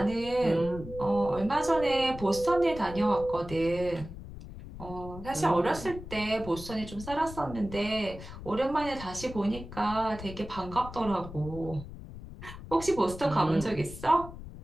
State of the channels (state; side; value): noise; left; rumble, 13 dB below the sound